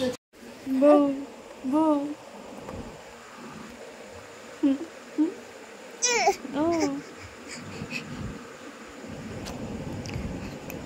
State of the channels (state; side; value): identical; both; correlation 1.00